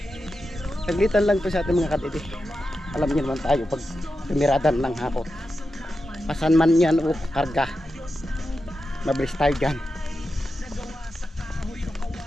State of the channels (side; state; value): both; normal; correlation 0.90